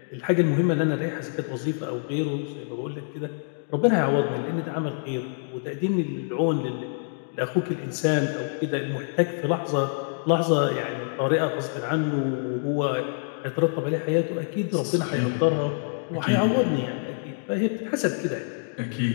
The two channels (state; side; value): silent; right; digital silence